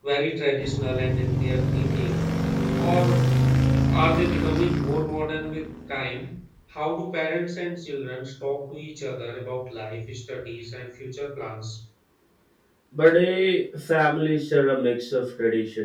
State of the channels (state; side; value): identical; both; correlation 1.00